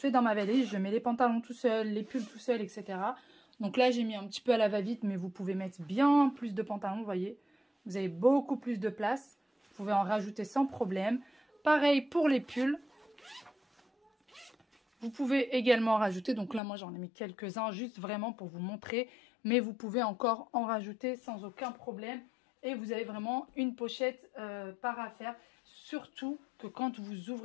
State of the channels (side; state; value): right; drops out; at 16.6 s